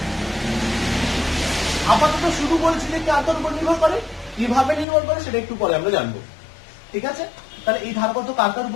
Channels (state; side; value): drops out; right; at 4.9 s